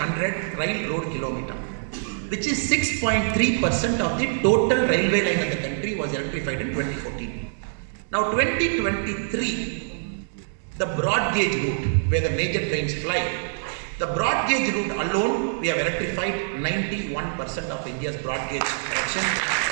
rail road kilometer, which is 6.3% of the total railway line of the country was electrified in 2014. Now 2023, the broad gauge route where the major trains fly, the broad gauge route alone, we have electrified 91% of India's broad gauge connection.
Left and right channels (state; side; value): silent; left; digital silence